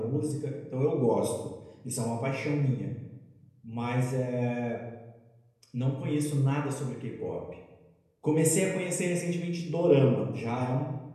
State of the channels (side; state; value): both; identical; correlation 1.00